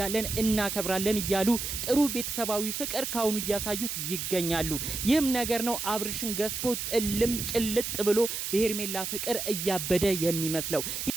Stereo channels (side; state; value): right; noise; hiss, 4 dB below the sound